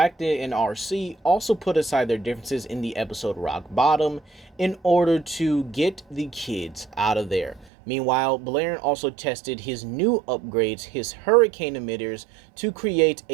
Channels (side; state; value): left; drops out; at 7.7 s